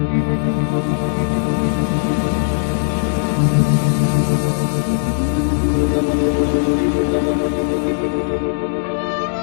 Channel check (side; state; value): right; silent; 63 dB below the other